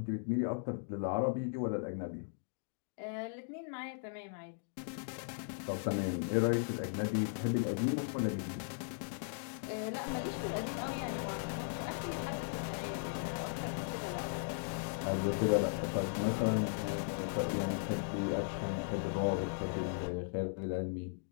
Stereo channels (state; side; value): silent; right; digital silence